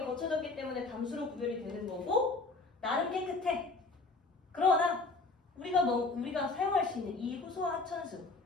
때문에 담수로 구별이 되는 거고 나름 깨끗해. 그러나 우리가 사용할 수 있는 이 호수와 하천수,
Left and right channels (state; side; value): quieter; right; 3.6 dB